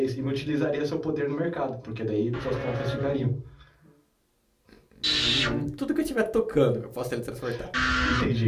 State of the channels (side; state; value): both; identical; correlation 1.00